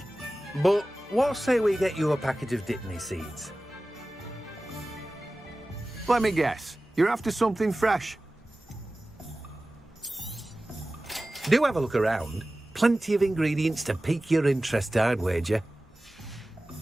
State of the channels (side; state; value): both; normal; correlation 0.97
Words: But what say we get you a packet of Dittany seeds? Let me guess. You're after something fresh. Do have a look around. Plenty of ingredients to pique your interest, I'd wager.